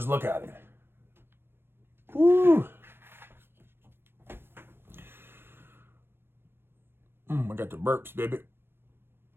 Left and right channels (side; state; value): left; late; 0.11 ms